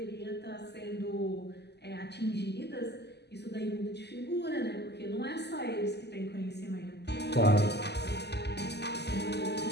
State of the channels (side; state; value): right; late; 0.49 ms